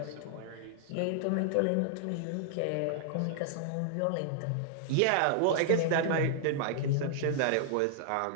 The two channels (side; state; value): both; different; correlation 0.00